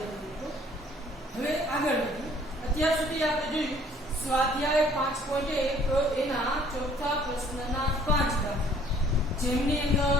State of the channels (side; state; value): both; normal; correlation 0.57